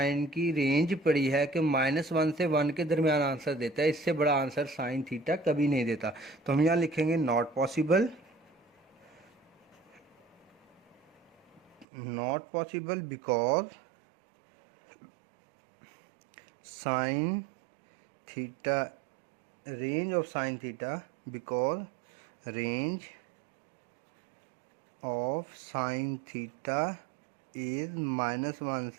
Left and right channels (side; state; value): left; drops out; at 11.9 s